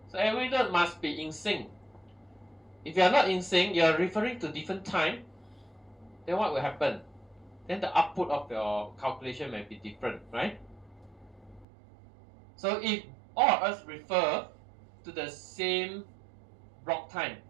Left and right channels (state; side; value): drops out; left; at 11.7 s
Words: So every node must be in sync. If you are not in sync, you are referring to different time, then what will happen? Then the output of your calculation may be different, right? So if all of us refer to the same block time,